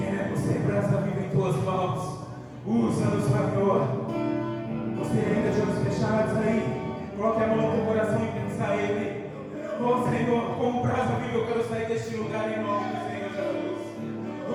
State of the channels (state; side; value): identical; both; correlation 1.00